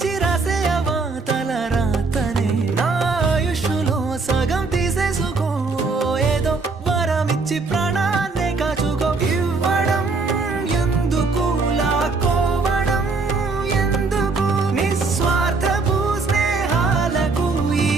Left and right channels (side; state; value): left; quieter; 4.0 dB